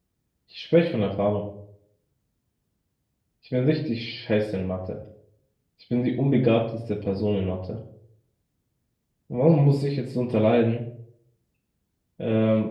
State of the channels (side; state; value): both; identical; correlation 1.00